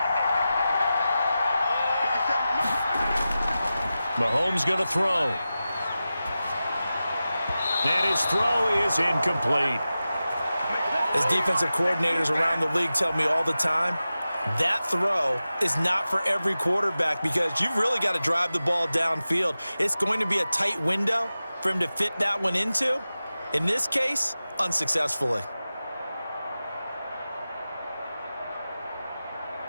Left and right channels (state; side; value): inverted; both; correlation -0.94